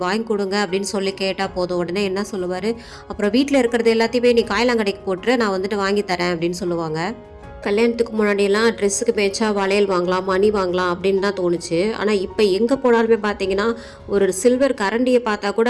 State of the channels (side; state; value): both; identical; correlation 1.00